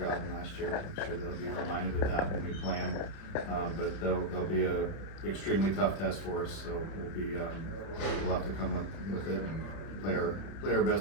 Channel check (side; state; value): right; late; 31 ms